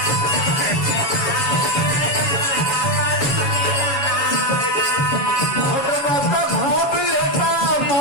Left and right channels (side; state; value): right; late; 6.9 ms